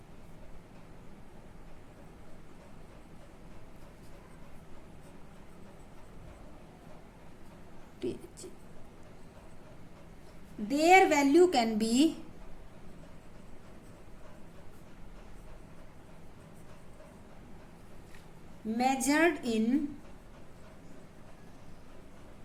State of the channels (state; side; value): identical; both; correlation 1.00